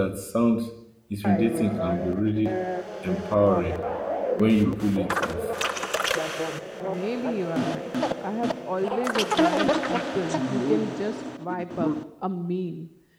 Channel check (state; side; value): identical; both; correlation 1.00